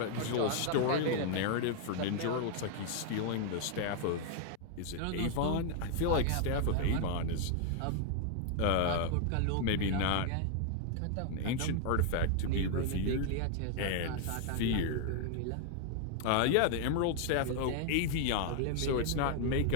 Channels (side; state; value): both; different; correlation 0.00